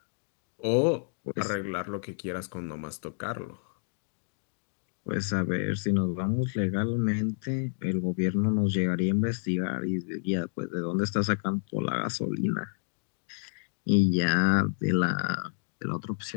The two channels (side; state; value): right; silent; digital silence